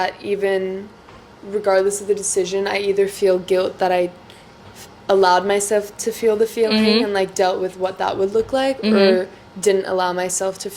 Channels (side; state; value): both; identical; correlation 1.00